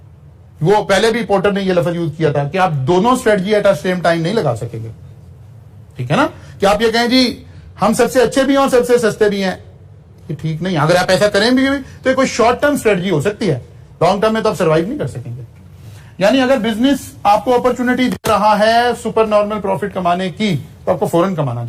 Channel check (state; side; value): identical; both; correlation 1.00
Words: वो पहले भी पोर्टर ने ये लफ्ज यूज किया था कि आप दोनों strategy at a same time नहीं लगा सकेंगे, ठीक है ना। कि आप ये कहें जी हम सबसे अच्छे भी हैं और सबसे सस्ते भी हैं, ये ठीक नहीं है। अगर आप ऐसा करें भी तो ये कोई शॉर्ट टर्म स्ट्रेटजी हो सकती है, लॉन्ग टर्म में तो आप सर्वाइव नहीं कर सकेंगे। यानी अगर बिजनेस आपको अपॉर्चुनिटी दे रहा है सुपर नॉर्मल प्रॉफिट कमाने की, तो आपको फौरन कमाना